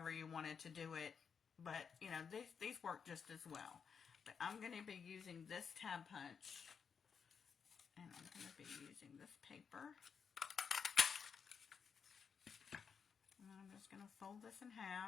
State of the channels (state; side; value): quieter; right; 6.4 dB